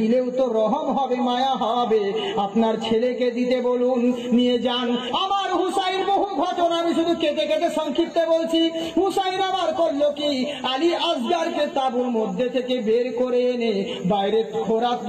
তো রহম হবে, মায়া হবে, আপনার ছেলেকে দিতে বলুন, নিয়ে যান। আমার হুসাইন বহু ঘটনা আমি শুধু কেটে কেটে সংক্ষিপ্ত বলছি। হুসাইন আবার করলো কি, আলী আসগারকে তাঁবুর মধ্যে থেকে বের করে এনে বাইরে খোরাক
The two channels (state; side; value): identical; both; correlation 1.00